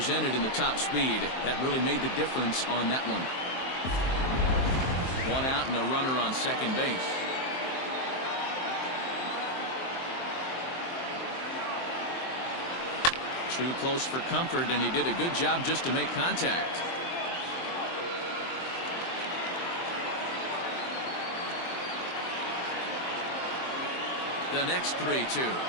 in the top speed. That really made the difference on that one. 1 out and a runner on second base. Too close for comfort, and he did a good job just to make contact. The next 3-2.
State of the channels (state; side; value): late; right; 23 ms